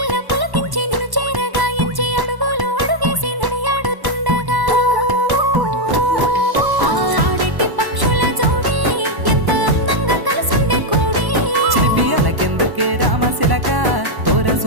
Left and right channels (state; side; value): late; left; 1.1 ms